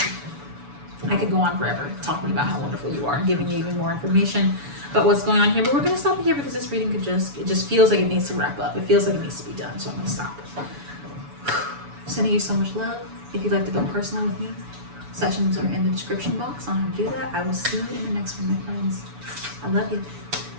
I could go on forever talking about how wonderful you are and giving you even more information about what's going on here, but we're going to stop here because this reading it just feels like it needs to wrap up. It feels like it needs to be done, so I'm going to stop. Sending you so much love. If you'd like to go personal with me, sessions are in the description box on how to do that. I will see you in the next one, my friends. I love you.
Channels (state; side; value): late; left; 7.0 ms